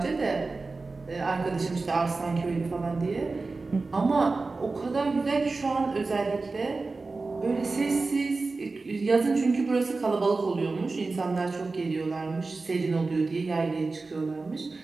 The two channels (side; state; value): left; quieter; 3.7 dB